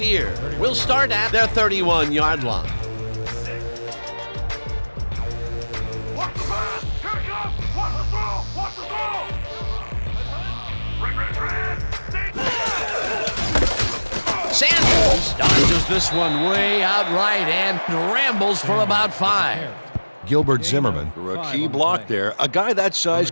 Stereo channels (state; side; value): inverted; both; correlation -1.00